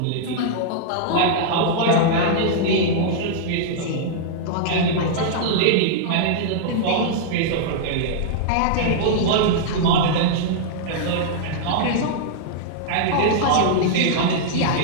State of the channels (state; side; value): different; both; correlation -0.02